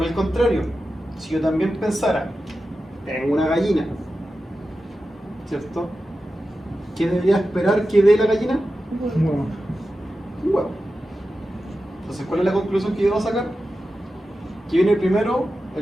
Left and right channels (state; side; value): normal; both; correlation 0.92